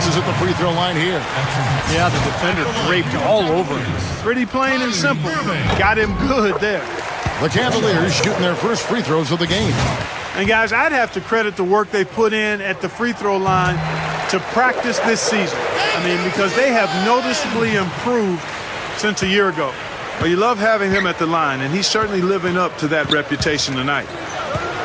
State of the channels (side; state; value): both; identical; correlation 1.00